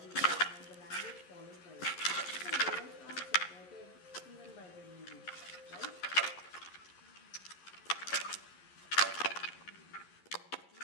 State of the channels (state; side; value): late; right; 11 ms